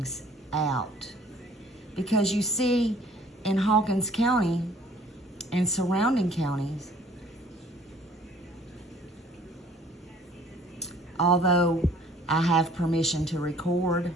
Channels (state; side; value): normal; both; correlation 0.56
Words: out. Because you see, in Hawkins County and surrounding counties, although I have permission to record